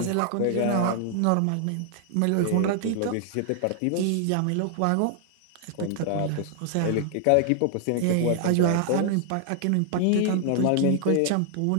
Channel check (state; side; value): different; both; correlation 0.00